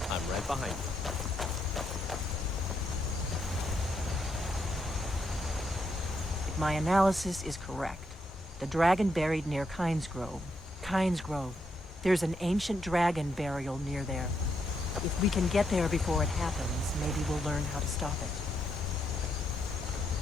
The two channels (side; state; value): both; normal; correlation 0.79